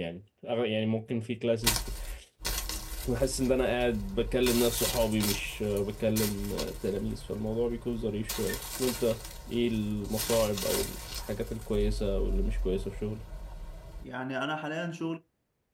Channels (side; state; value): both; identical; correlation 1.00